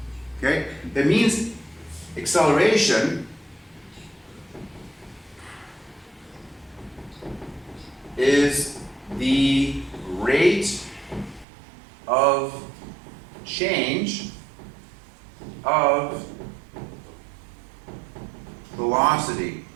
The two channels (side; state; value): left; drops out; at 11.5 s